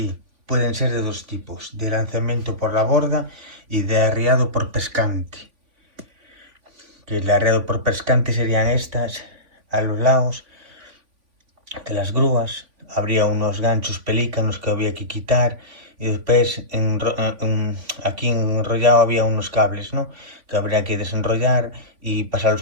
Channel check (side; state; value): left; late; 3.5 ms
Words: Pueden ser de dos tipos, de lanzamiento por la borda y de arriado por pescante. Que el arreado por pescante serían estas, a los lados de las grúas. Habría unos ganchos pelícanos que había que quitar y después aquí enrollado había unos cables, ¿no? Que habría que desenrollar y